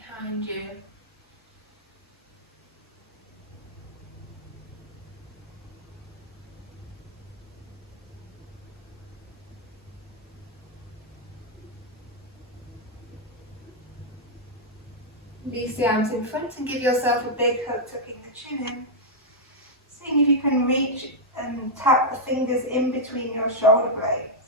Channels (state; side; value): normal; both; correlation -0.05